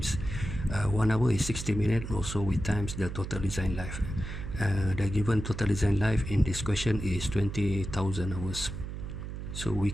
1 hour is 60 minutes. Also we times the total design life. The given total design life in this question is 20,000 hours. So we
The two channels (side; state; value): right; noise; hum, 7 dB below the sound